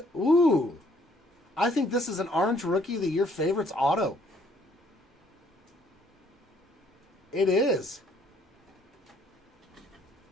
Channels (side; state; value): both; normal; correlation 0.64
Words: Ooh. I think this is an Orange Rookie of the Year Favorites auto. It is.